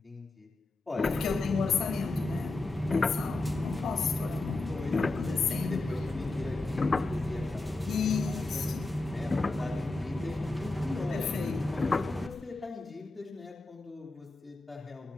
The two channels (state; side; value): quieter; right; 3.1 dB